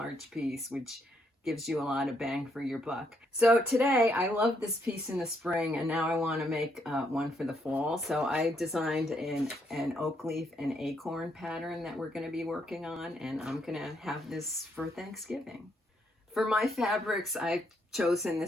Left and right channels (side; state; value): both; normal; correlation 0.74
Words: piece, which gives you a lot of bang for your buck. So today, I love this piece in the spring, and now I want to make one for the fall. So I designed an oak leaf and acorn pattern that we're going to be working on, and I'm going to have this for Thanksgiving. For my fabrics, I've chosen